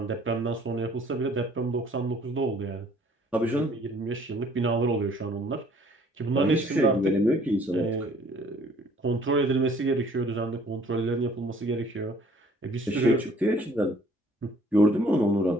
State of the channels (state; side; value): normal; both; correlation 0.57